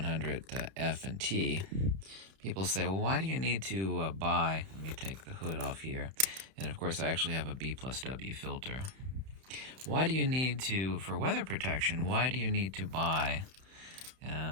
and T. People say, well, why do you need to buy, let me take the hood off here, and of course I actually have a B+W filter. Why do you need to, for weather protection, why do you need to buy,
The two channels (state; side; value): late; left; 31 ms